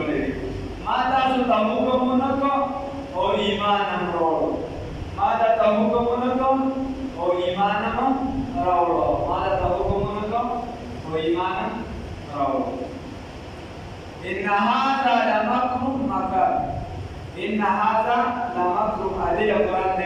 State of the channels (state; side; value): identical; both; correlation 1.00